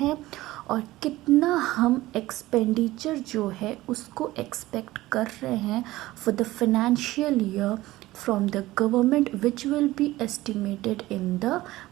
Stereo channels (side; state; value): left; quieter; 17.4 dB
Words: और कितना हम एक्सपेंडिचर जो है उसको एक्सपेक्ट कर रहे हैं for the financial year from the government which will be estimated in the